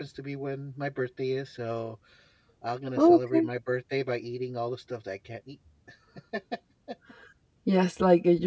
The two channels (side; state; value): both; identical; correlation 1.00